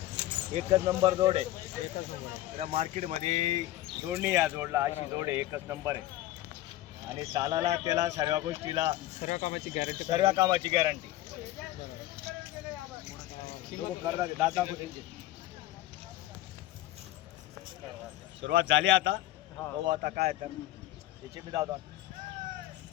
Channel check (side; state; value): right; quieter; 15.3 dB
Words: एकच नंबर जोड आहे. मार्केटमध्ये जोडणी या जोडला अशी जोड आहे. एकच नंबर आहे. आणि चालायला त्याला सर्व गोष्टीला सर्व कामाची गॅरंटी करदात आहे. दाता सुरुवात झाली आता. बघू आता काय तर त्याचे बी दादा